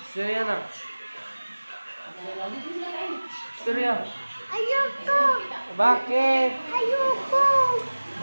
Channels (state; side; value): inverted; both; correlation -1.00